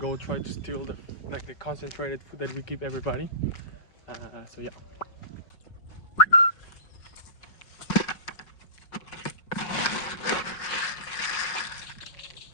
try to steal the concentrated food that we give everybody. So yeah.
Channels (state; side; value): late; right; 5.4 ms